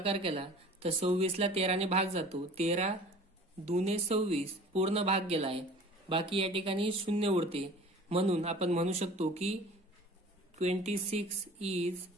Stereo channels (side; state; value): both; normal; correlation 0.44